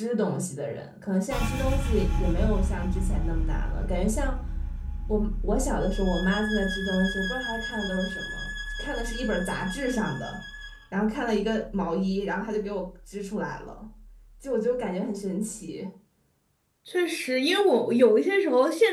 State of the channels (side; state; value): both; identical; correlation 1.00